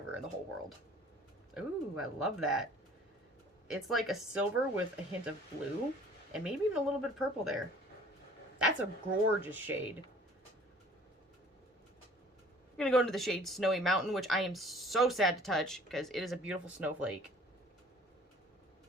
in the whole world. Ooh, I love that. It's like a silver with a hint of blue and maybe even a little bit of purple there. That's a gorgeous shade. I'm going to go into the shade Snowy Mountain, which I am so sad to touch because it is a beautiful snowflake.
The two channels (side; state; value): both; normal; correlation 0.52